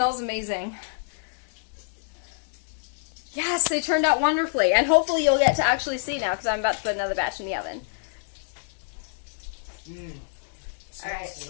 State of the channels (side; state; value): right; silent; digital silence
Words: amazing. Yes, they turned out wonderfully. And hopefully you'll get to actually see now, because I'm about to put another batch in the oven. Smells All right.